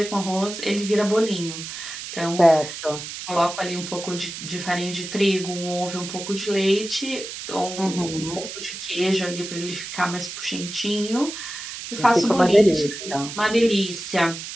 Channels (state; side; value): noise; right; hiss, 9 dB below the sound